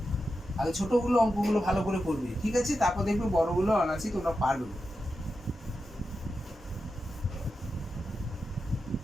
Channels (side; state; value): both; normal; correlation 0.90